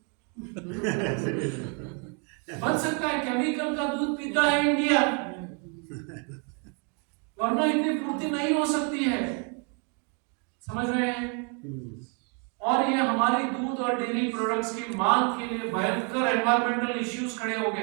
बन सकता है। केमिकल का दूध पीता है इंडिया, वरना इतनी पूर्ति नहीं हो सकती है। समझ रहे हैं? और ये हमारी दूध और डेयरी प्रोडक्ट्स की मांग के लिए भयंकर एनवायरमेंटल इश्यूज खड़े हो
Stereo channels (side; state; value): left; quieter; 36.5 dB